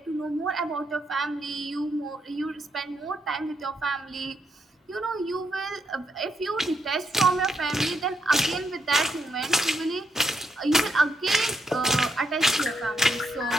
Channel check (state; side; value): normal; both; correlation 0.79